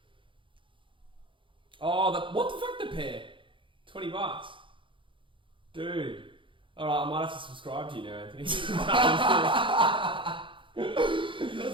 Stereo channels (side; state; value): left; late; 0.24 ms